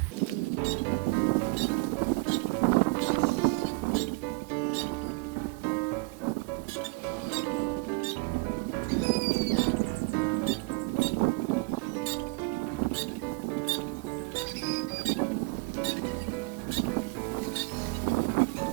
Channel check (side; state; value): left; quieter; 27.4 dB